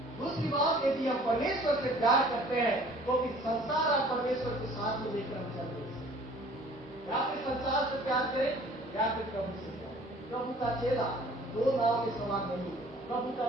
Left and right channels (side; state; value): both; normal; correlation 0.52